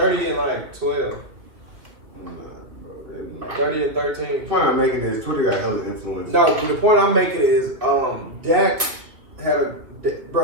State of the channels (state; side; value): late; left; 2.6 ms